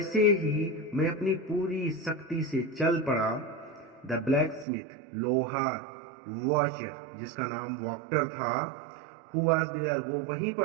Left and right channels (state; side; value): drops out; left; at 4.7 s